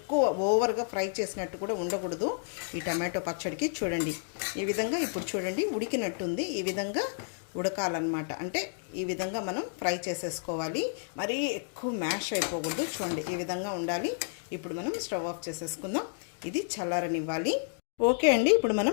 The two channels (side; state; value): right; silent; digital silence